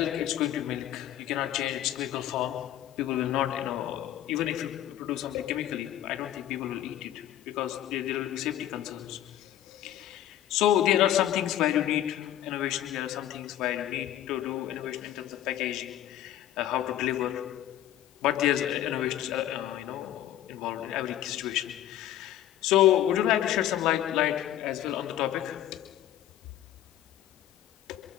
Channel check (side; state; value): right; quieter; 12.5 dB